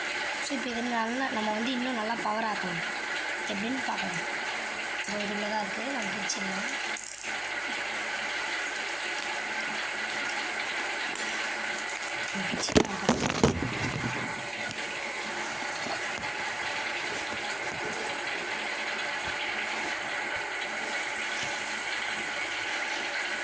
ஸோ இப்போ இது நல்லா நம்ம வந்து இன்னும் நல்லா பவர் ஆக்கணும். எப்படின்னு பார்க்கலாம். இதில் தான் இருக்குது, நம்ம பிரிச்சிடலாம்.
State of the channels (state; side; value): noise; right; hum, 28 dB below the sound